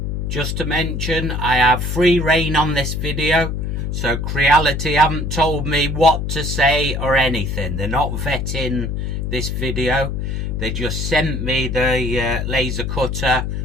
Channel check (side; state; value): left; noise; hum, 2 dB below the sound